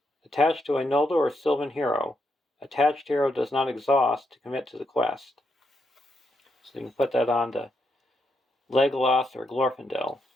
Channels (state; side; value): normal; both; correlation 0.80